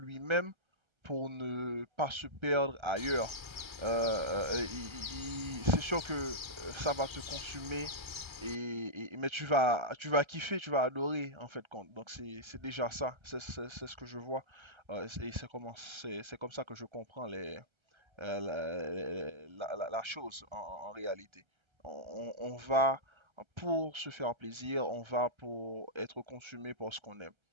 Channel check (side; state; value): left; late; 1.3 ms